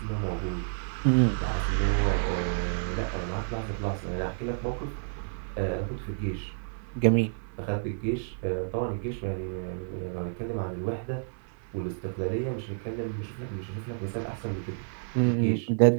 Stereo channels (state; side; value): silent; left; 58 dB below the other